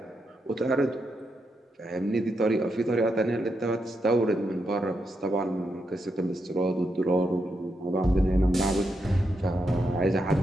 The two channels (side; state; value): both; normal; correlation 0.83